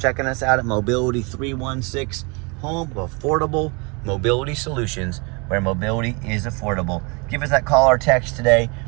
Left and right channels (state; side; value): quieter; left; 30.5 dB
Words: us out at Mobility 316, home of affordable mobility solutions where mobility is affordable. Give us that call or text today.